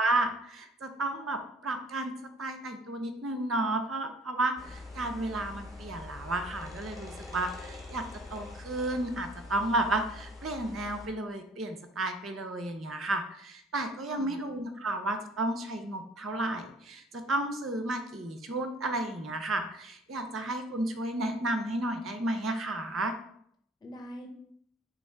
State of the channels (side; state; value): both; normal; correlation 0.53